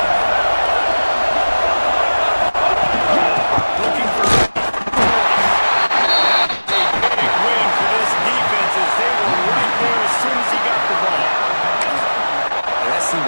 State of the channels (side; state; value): both; inverted; correlation -1.00